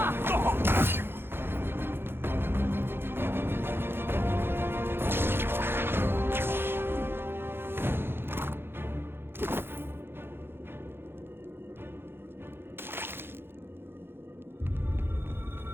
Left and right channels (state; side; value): late; left; 0.11 ms